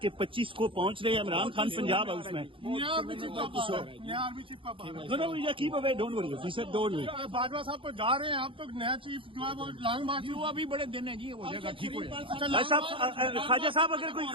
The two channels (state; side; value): late; left; 0.25 ms